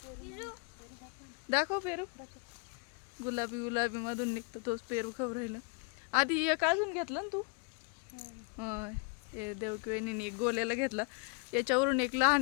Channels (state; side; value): quieter; right; 34.7 dB